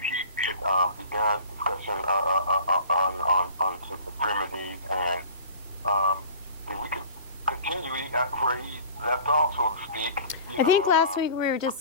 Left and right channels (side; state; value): both; inverted; correlation -0.43